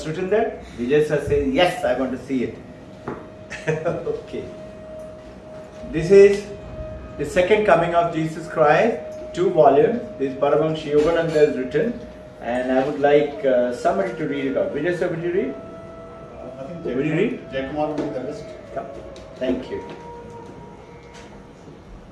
written there? Vijay sir says, yes, I want to see it. Okay. This is the second coming of Jesus Christ, 2 volumes. This Paramahansa Yogananda has written, and I would like somebody to read it out. Vijay sir, will you read? I think Will you read? Jayakumar will be the best. Yeah. Thank you.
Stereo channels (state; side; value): identical; both; correlation 1.00